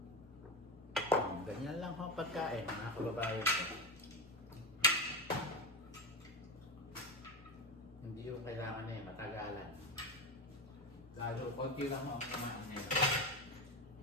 Ganyan lang ho pagkain, mga kababayan ko. Hindi yung kailangan matagalan. Lalo, konti lang ho ang kumain nila.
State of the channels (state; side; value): normal; both; correlation 0.19